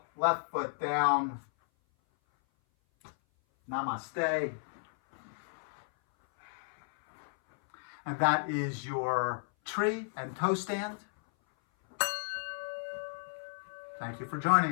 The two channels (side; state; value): right; silent; 55 dB below the other